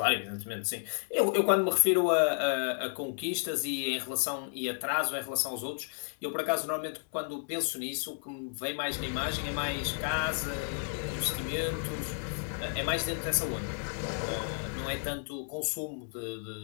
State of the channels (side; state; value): right; silent; 56 dB below the other